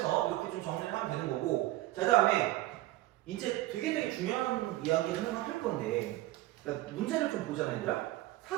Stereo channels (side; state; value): left; quieter; 17.0 dB